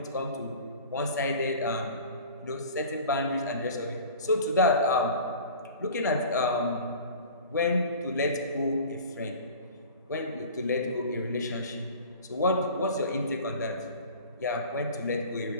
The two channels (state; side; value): inverted; both; correlation -0.41